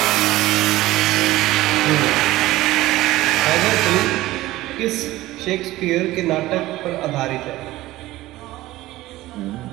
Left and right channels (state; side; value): quieter; left; 17.0 dB